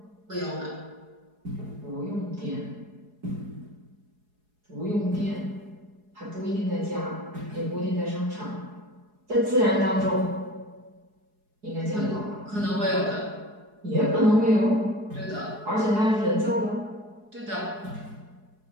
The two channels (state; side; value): late; left; 4.7 ms